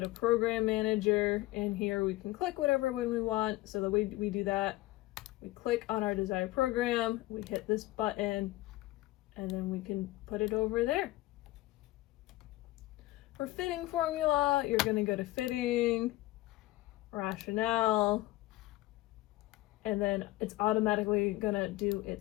program manager, and here we can click whatever one we want. So the way we do that, we click on our desired program, we hit this button, and then we can put it over there. For fitting formula, you're going to go to fitting, rationale, and then it's automatically going to do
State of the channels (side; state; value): right; quieter; 18.4 dB